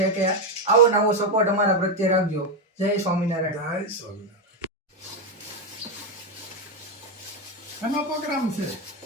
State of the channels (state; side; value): normal; both; correlation 0.07